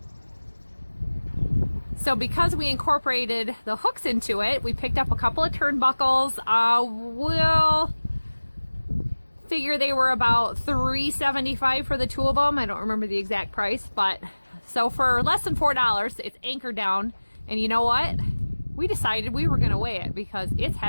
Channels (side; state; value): both; inverted; correlation -1.00